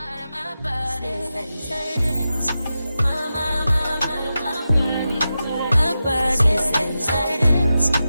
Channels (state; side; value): inverted; both; correlation -0.91